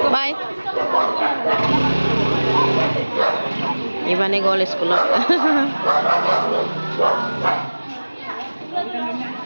Bye. Ivan gol school.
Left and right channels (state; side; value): inverted; both; correlation -1.00